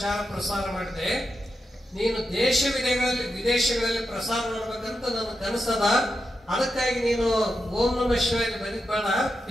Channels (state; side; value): normal; both; correlation 0.87